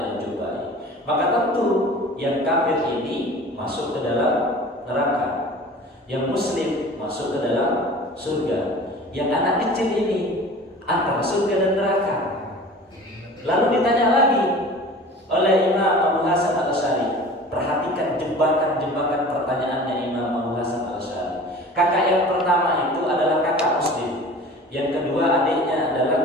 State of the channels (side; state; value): both; normal; correlation 0.41